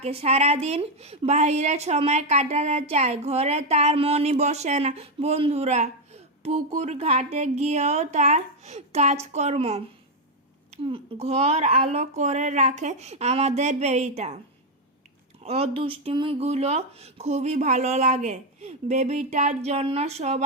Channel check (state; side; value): normal; both; correlation 0.02